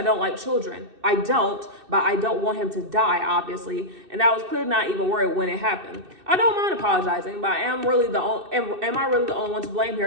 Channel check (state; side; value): late; left; 2.6 ms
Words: don't like children. I don't, but I don't want him to die, obviously. And I was clearly not even worried when it happened. I don't mind apologizing, but am I really the only one to blame